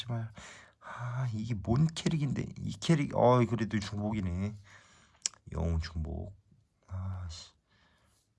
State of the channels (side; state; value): both; identical; correlation 1.00